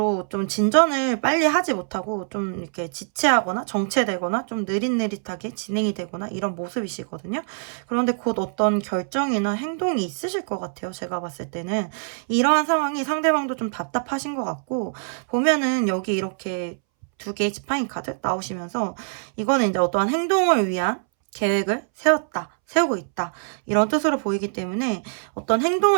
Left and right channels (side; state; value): left; silent; 63 dB below the other